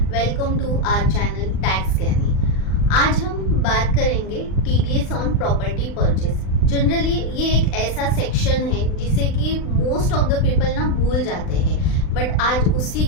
Welcome to our channel tax Gyani. आज हम बात करेंगे TDS on property purchase. Generally ये एक ऐसा सेक्शन है जिसे कि मोस्ट ऑफ द पीपल ना भूल जाते हैं, बट आज उसी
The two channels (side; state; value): right; late; 39 ms